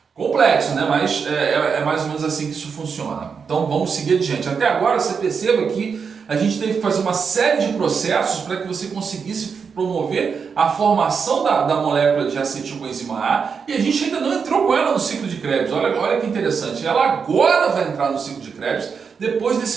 Complexo, né? Mas é mais ou menos assim que isso funciona. Então vamos seguir adiante. Até agora você perceba que a gente teve que fazer uma série de processos para que você conseguisse promover a formação da molécula de acetilcoenzima A, e a gente ainda não entrou com ela no ciclo de Krebs. Olha que interessante, ela agora vai entrar no ciclo de Krebs depois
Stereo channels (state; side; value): quieter; left; 6.0 dB